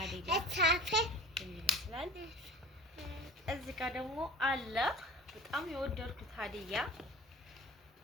ይመስላል እዚህ ጋር ደግሞ አለ በጣም የወደድኩት ሀዲያ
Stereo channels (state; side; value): normal; both; correlation 0.40